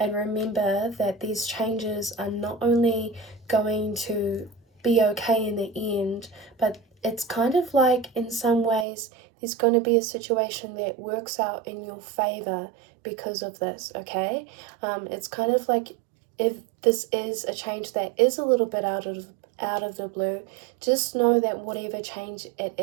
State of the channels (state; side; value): drops out; left; at 8.8 s